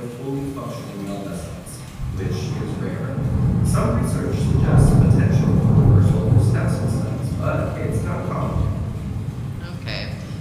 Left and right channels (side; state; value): both; identical; correlation 1.00